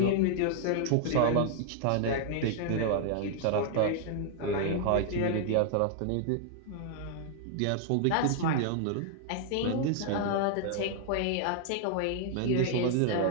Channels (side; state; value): both; different; correlation 0.00